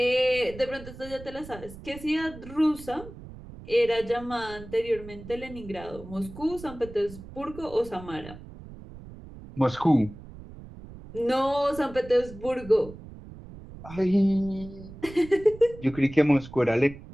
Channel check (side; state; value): right; noise; rumble, 16 dB below the sound